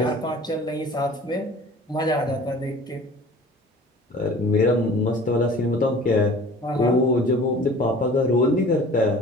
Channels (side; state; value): both; normal; correlation 0.45